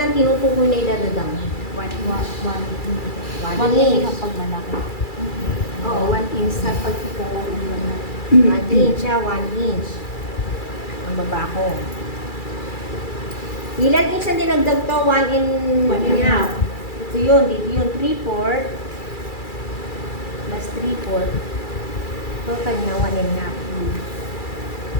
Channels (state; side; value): late; right; 2.3 ms